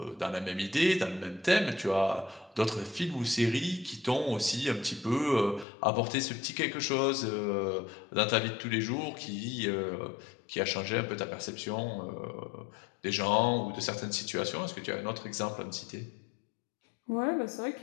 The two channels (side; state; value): right; drops out; at 5.7 s